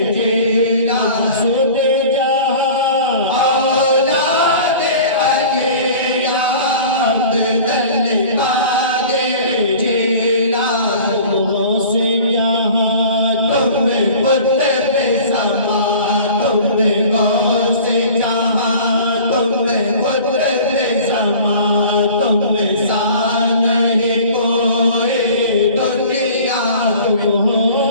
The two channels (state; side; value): inverted; both; correlation -0.43